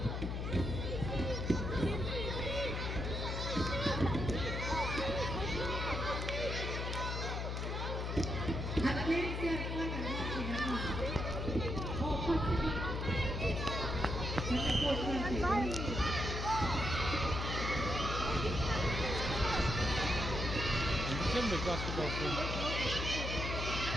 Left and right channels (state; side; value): noise; left; hum, 2 dB below the sound